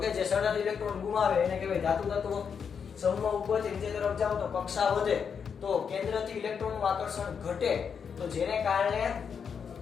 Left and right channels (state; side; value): quieter; right; 6.7 dB